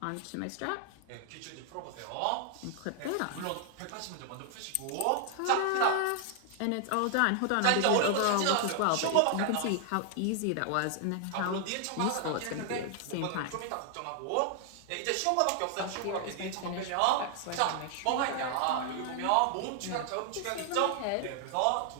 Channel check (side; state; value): both; different; correlation 0.00